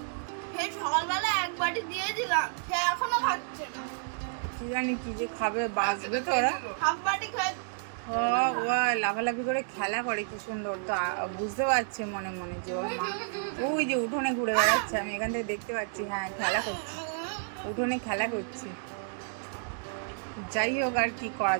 এই সকালবেলা এক বাটি দিয়ে দিলাম, সে এখনো খাচ্ছে না। কি জানি কি যে খাবে, বাঁচবে তো ওরা। হাফ বাটি খায়। ও লাফালাফি করে খেলা করে কি সুন্দর, তো বুঝতে পারছে মনে মনে যে ওর মা ওই যে উঠোনে ঘুরে বেড়াচ্ছে, আমি এখান থেকে দেখতে পাচ্ছি। হ্যাঁ খেলা করছে, উঠোনে খেলা করছে। যাই হোক আর কি করা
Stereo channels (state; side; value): silent; left; digital silence